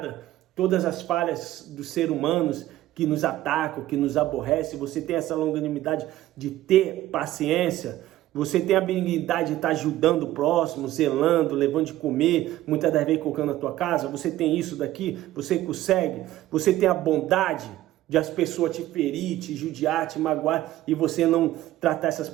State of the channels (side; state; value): left; quieter; 14.8 dB